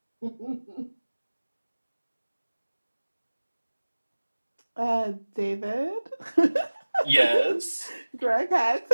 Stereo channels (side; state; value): both; inverted; correlation -1.00